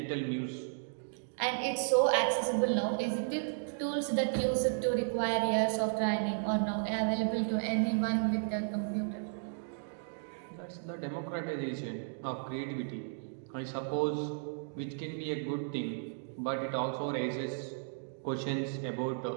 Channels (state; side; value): silent; left; digital silence